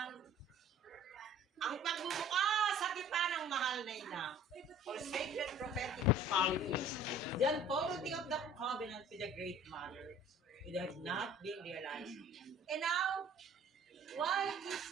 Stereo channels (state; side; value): normal; both; correlation 0.49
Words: ang pagbubukas sa tipan ng mahal na ina, for sacred prophetic qualities, the unfolding of the covenant with the Great Mother, would have not been realized. And now, why is